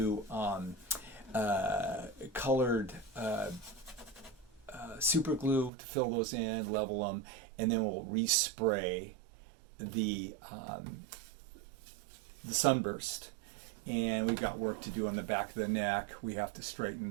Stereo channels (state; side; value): drops out; left; at 5.7 s